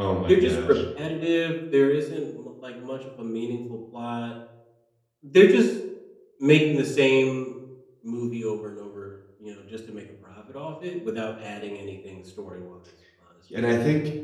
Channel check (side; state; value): both; identical; correlation 1.00